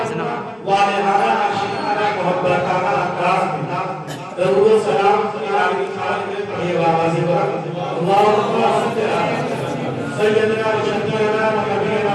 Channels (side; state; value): both; identical; correlation 1.00